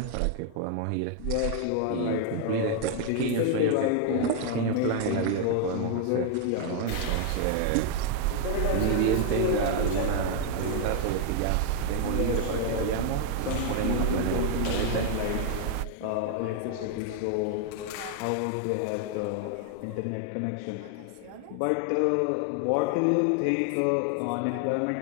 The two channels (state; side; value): different; both; correlation 0.00